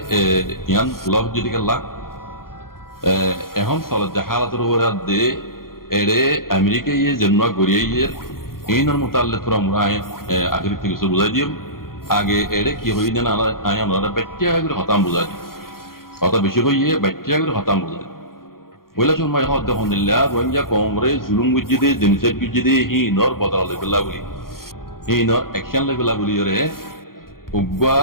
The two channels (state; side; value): late; right; 0.92 ms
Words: ইয়ান লভ যদি গেলা এখন চলত হালাতের উপরে দে এরে আমেরিকা ইয়ে জন্ম গড়িয়ে ইয়ে এইনার মোতাল্লে তোরা মোরা আগের থেকে কিছু বুঝাই দিও আগে এরে কি হই না আয় আমরা বাচ্চা করে হতাম বুঝাই দিই কথা বেশি হইয়ে বাচ্চা করে হতাম বুঝাই ওইলা সময় হদ দেখুন দিল্লা রোহিঙ্গা কংগ্রেস জুলুম গুজি দে জেনিসাইড গুজি দে হি নর বদলা লেবেলা বলি হি নর অ্যাকশন লেবেলা বলি রে উগা